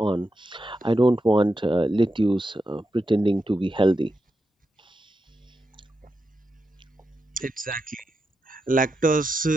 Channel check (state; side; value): normal; both; correlation 0.87